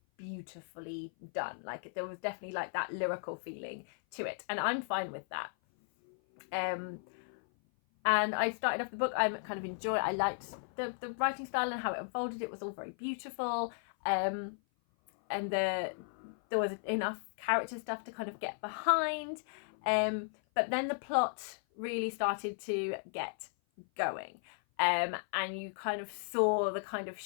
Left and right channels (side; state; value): right; silent; 54 dB below the other